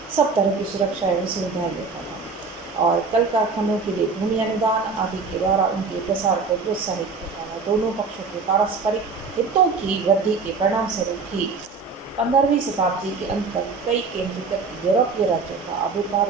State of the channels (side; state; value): left; quieter; 4.6 dB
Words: सब तरह की सुरक्षा एवं सुविधाएं देता था और कल कारखानों के लिए भूमि अनुदान आदि के द्वारा उनके प्रसार को प्रोत्साहित करता था। दोनों पक्षों के पारस्परिक हितों की वृद्धि के परिणाम स्वरूप ही 15वीं शताब्दी के अंत तक कई केंद्रीकृत यूरोपीय राज्यों का आविर्भाव